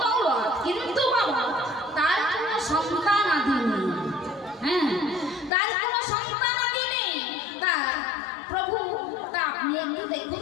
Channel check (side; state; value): right; drops out; at 5.5 s